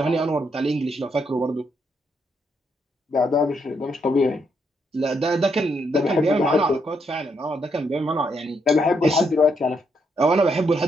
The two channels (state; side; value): normal; both; correlation 0.77